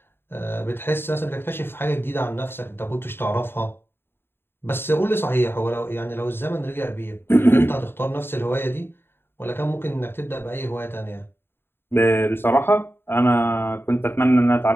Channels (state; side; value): late; right; 0.11 ms